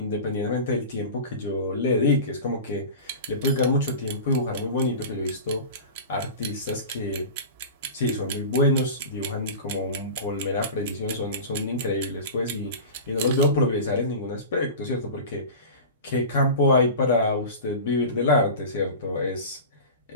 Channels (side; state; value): both; inverted; correlation -0.32